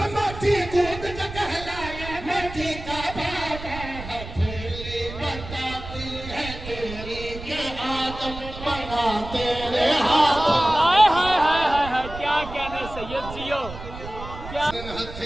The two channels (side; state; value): right; noise; rumble, 11 dB below the sound